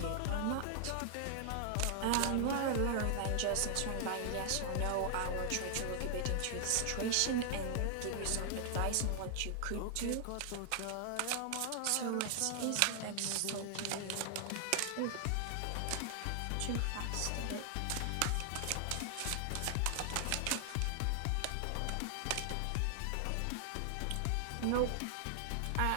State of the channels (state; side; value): different; both; correlation 0.00